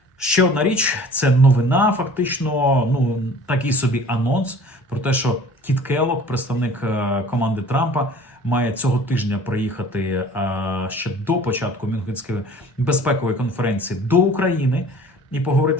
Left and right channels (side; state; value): both; normal; correlation 0.47